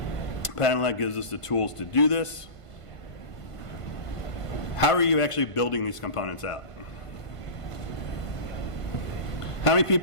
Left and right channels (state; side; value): late; right; 1.5 ms